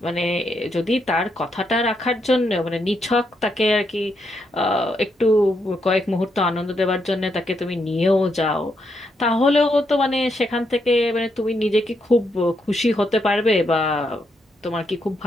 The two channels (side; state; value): both; normal; correlation 0.79